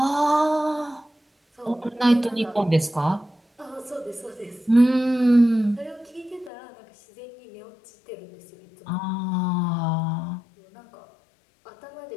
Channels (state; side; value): drops out; right; at 6.5 s